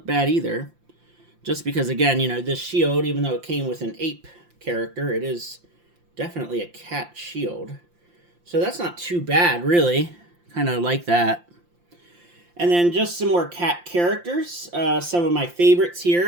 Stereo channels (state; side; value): late; left; 5.8 ms